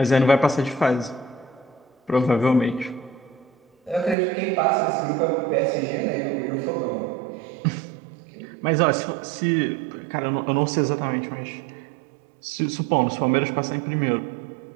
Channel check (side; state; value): left; drops out; at 4.2 s